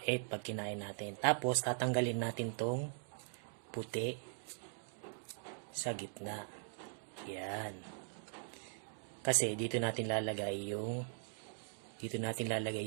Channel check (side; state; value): left; silent; digital silence